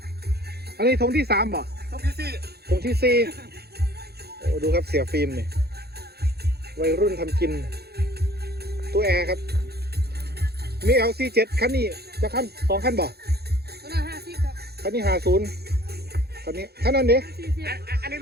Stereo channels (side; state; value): left; late; 0.46 ms